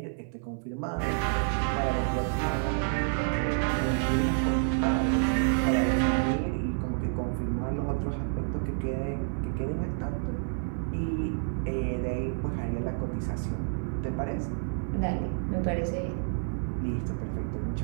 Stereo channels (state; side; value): silent; left; 58 dB below the other